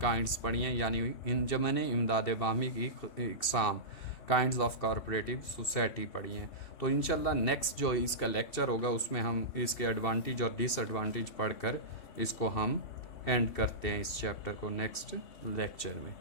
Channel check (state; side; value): late; right; 2.7 ms